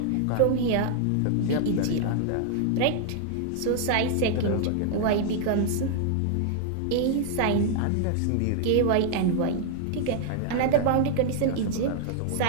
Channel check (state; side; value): different; both; correlation 0.00